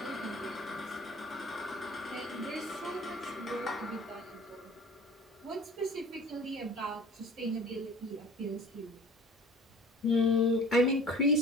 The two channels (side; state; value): both; normal; correlation 0.44